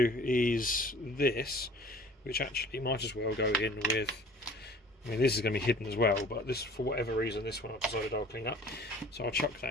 do is this, which actually might as well go in with, I mean, this is going to be hidden as well, but this, for whatever reason, this one I've decided I'll clean up, so I'll chuck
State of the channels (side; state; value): both; normal; correlation 0.48